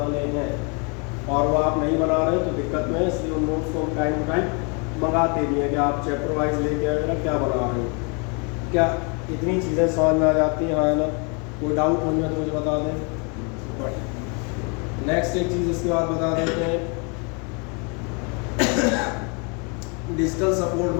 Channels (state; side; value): quieter; right; 34.3 dB